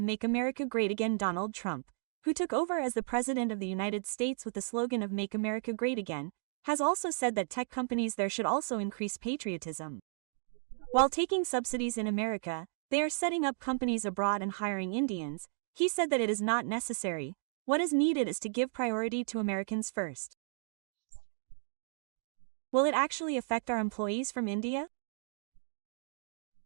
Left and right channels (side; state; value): left; silent; digital silence